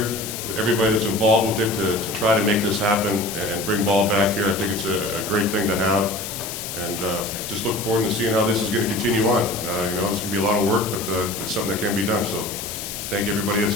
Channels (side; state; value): left; noise; hiss, 7 dB below the sound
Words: Everybody that's involved with it to try to make this happen and bring ball back here. I think it's a great thing to have, and just look forward to seeing how this is going to continue on. It's going to be a lot of work, but it's something that can be done. So, thank you everybody that's